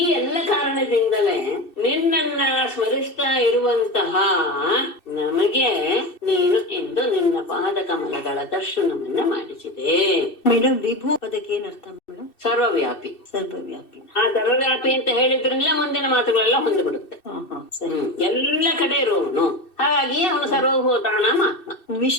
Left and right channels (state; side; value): late; right; 2.6 ms